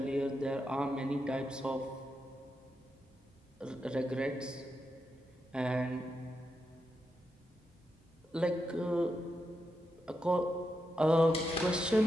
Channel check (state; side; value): normal; both; correlation 0.86